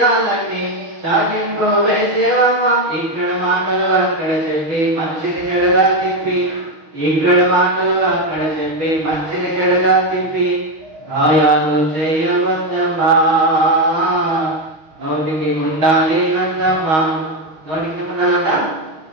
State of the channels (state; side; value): late; left; 6.4 ms